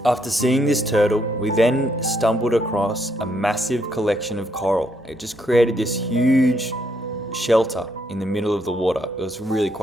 After seeing this turtle, we then stumbled across a massive collection of coral. It just created this huge shelter in the middle of the water. It was really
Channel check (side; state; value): both; normal; correlation 0.74